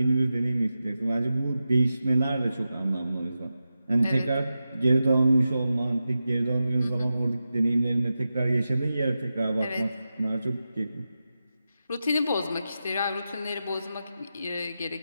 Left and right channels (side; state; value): both; inverted; correlation -0.91